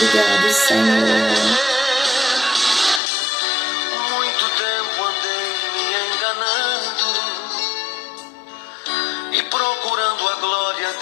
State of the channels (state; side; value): drops out; right; at 3.0 s